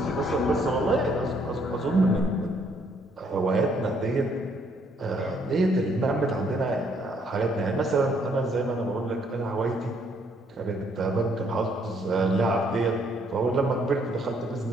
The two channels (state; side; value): normal; both; correlation 0.68